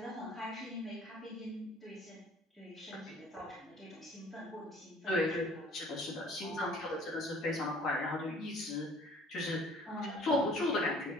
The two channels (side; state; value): both; normal; correlation 0.52